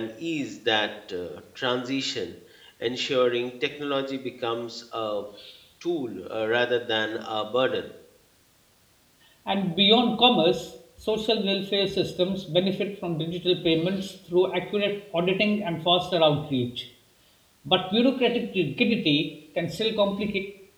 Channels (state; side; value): identical; both; correlation 1.00